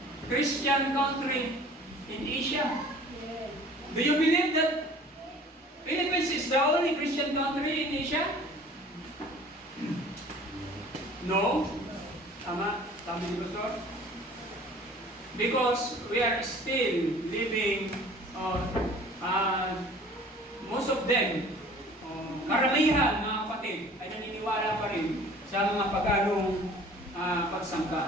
Christian country in Asia. Do you believe that Philippines is the only Christian country in Asia? No? Tama? Tama ni Pastor? Because we are still living, most of them, karamihan mga kapatid, ay naniniwala pa rin sa mga paganong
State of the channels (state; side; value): normal; both; correlation 0.48